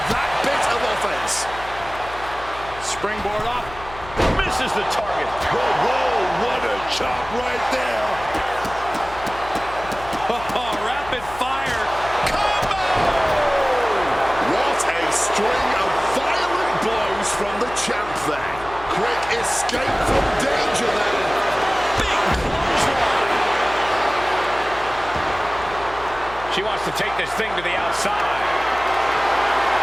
that bit of offense. Springboard up. Misses the target. Whoa, whoa, what a chop right there. Oh, rapid fire. Combo! What a string of violent blows from the champ there. Quick escape from danger there. Big clothesline. She wants to take this thing to the outside.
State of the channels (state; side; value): noise; left; hum, 16 dB below the sound